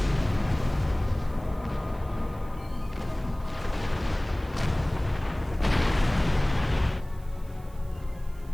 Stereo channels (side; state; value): right; noise; hiss, 27 dB below the sound